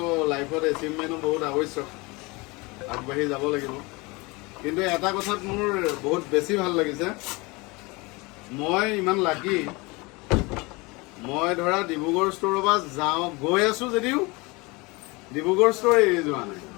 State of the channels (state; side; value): quieter; right; 25.3 dB